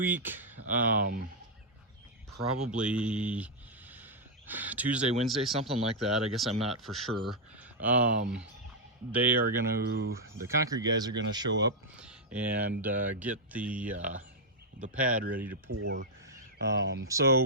probably Tuesday, Wednesday, something like that. I guess I'm not for sure. The concrete guys are gonna show up and get the pad ready to pour. So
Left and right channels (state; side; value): normal; both; correlation -0.04